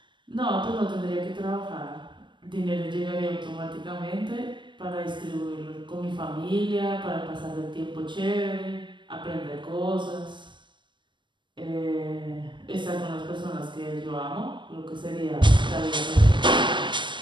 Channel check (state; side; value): late; left; 0.23 ms